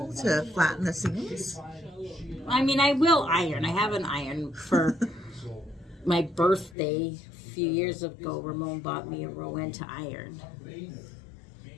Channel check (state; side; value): drops out; right; at 6.8 s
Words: to flatten the seams? I mean, I will iron. I have an iron for my birthday a few years ago. Ramon bought me a Rowan to iron.